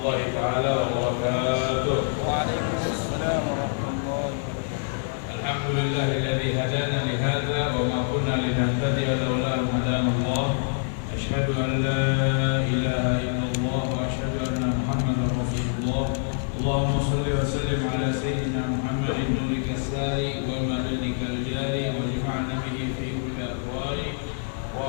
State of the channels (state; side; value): silent; right; digital silence